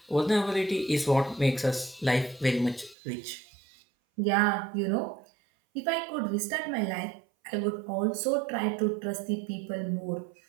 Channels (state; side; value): drops out; left; at 3.0 s